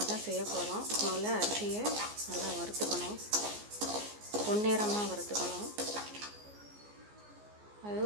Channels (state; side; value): late; left; 14 ms